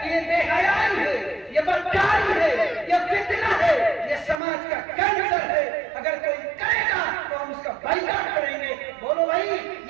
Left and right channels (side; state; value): left; drops out; at 4.4 s